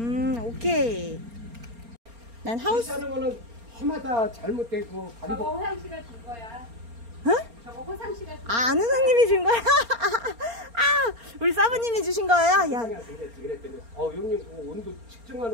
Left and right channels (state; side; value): late; left; 4.3 ms